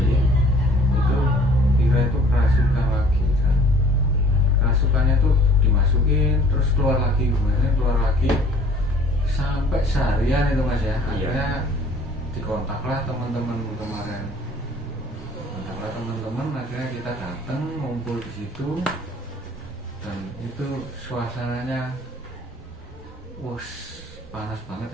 itu Vira itu kerasukan lagi kan. Kerasukannya tuh dimasukin terus keluar lagi, kemudian keluar lagi sampai seharian itu mas ya. Akhirnya dikontaklah teman-teman kemarin. Kontaklah teman-teman, akhirnya kita datang ngumpul di situ. Dan itu suasananya panas banget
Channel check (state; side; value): normal; both; correlation 0.53